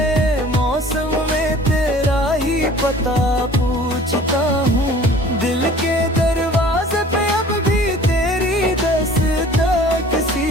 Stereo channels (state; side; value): normal; both; correlation 0.48